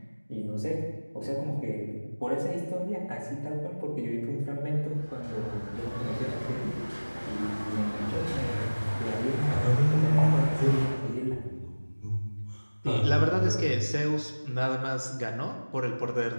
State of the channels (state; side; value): inverted; both; correlation -1.00